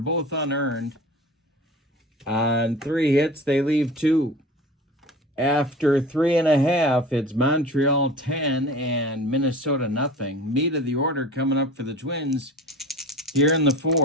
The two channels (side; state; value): both; normal; correlation 0.38